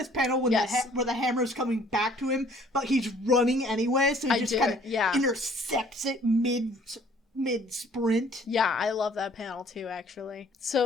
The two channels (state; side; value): normal; both; correlation 0.57